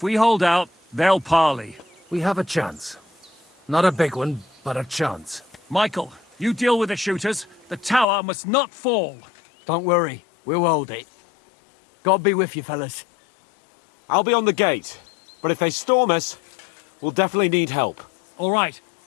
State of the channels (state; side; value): drops out; right; at 8.1 s